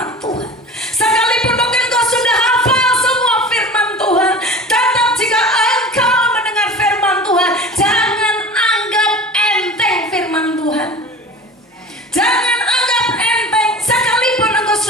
Tuhan, sekalipun mungkin kau sudah hafal semua firman Tuhan, tetap jika engkau mendengar firman Tuhan, jangan anggap enteng firman Tuhan. Jangan anggap enteng sekalipun engkau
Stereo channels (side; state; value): both; normal; correlation 0.37